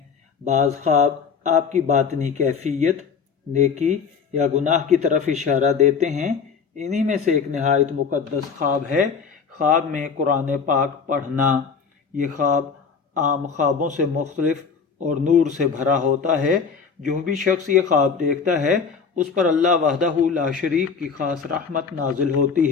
بعض خواب آپ کی باطنی کیفیت، نیکی یا گناہ کی طرف اشارہ دیتے ہیں۔ انہی میں سے ایک نہایت مقدس خواب ہے خواب میں قرآن پاک پڑھنا۔ یہ خواب عام خوابوں سے مختلف اور نور سے بھرا ہوتا ہے۔ جو بھی شخص یہ خواب دیکھتا ہے اس پر اللہ وحدہ لا شریک کی خاص رحمت نازل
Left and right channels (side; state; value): right; quieter; 5.8 dB